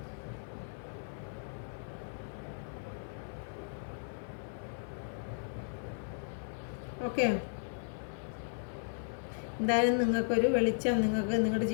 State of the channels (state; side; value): silent; right; 54 dB below the other